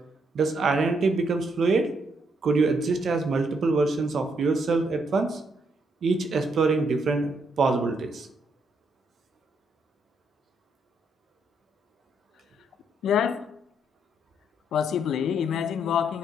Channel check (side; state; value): both; normal; correlation 0.74